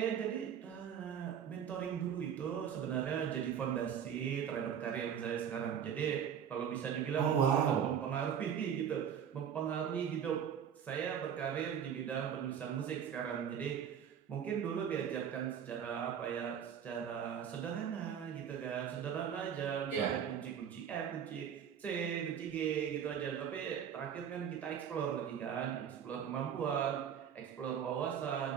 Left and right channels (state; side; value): quieter; left; 8.4 dB